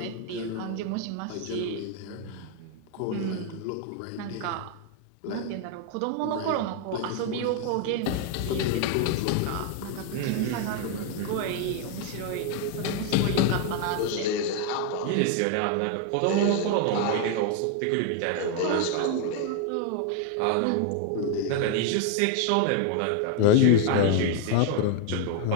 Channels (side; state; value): both; different; correlation 0.01